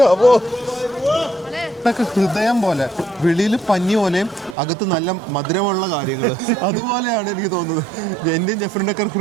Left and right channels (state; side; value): drops out; left; at 4.5 s